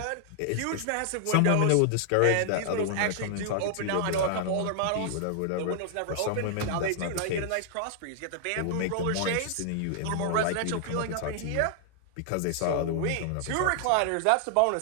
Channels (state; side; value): different; both; correlation 0.00